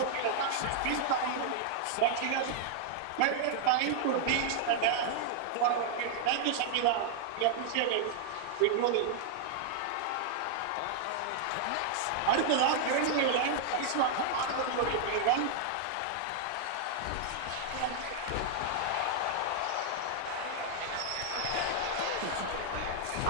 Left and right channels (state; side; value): different; both; correlation -0.01